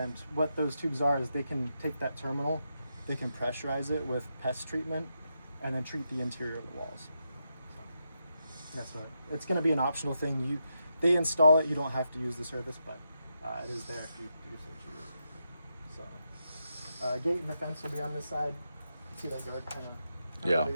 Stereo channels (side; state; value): both; inverted; correlation -0.84